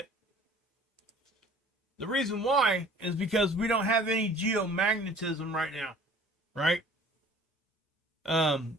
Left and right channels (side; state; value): both; normal; correlation 0.50